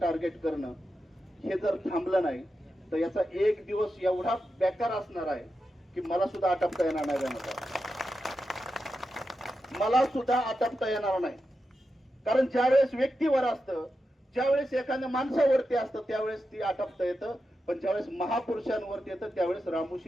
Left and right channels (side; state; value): both; normal; correlation 0.89